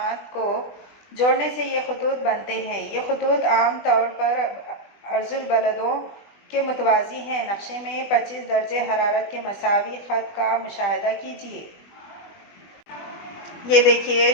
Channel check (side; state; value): right; late; 20 ms